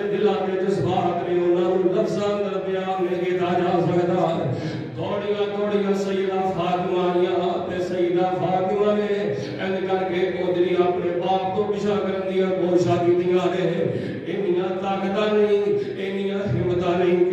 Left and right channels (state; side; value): identical; both; correlation 1.00